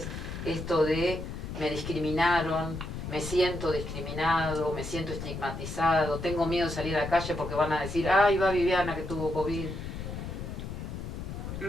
esto de me discriminaron, me siento discriminado, me siento estigmatizado, tengo miedo de salir a la calle porque van a decir, ay, va Viviana que tuvo COVID?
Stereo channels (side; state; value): left; noise; rumble, 7 dB below the sound